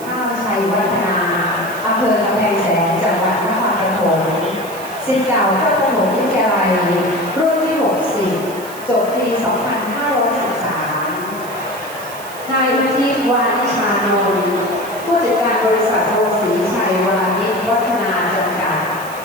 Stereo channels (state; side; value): noise; right; hiss, 16 dB below the sound